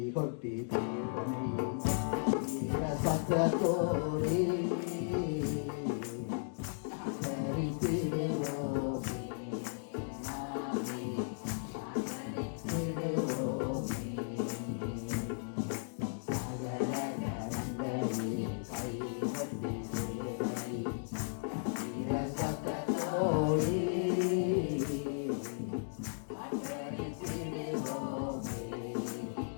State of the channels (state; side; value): silent; right; digital silence